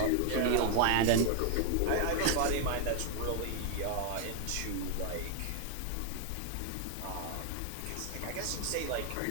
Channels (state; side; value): different; both; correlation 0.00